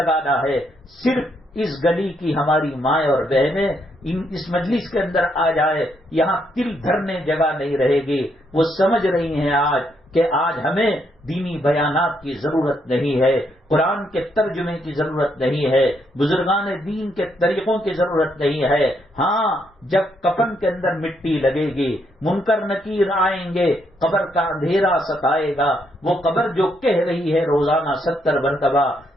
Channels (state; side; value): normal; both; correlation 0.75